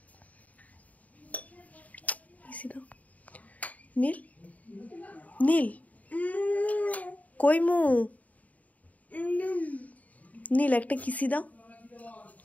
নীল নীল কই মু? নীল একটা কিসি দাও,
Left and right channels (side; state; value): right; late; 0.072 ms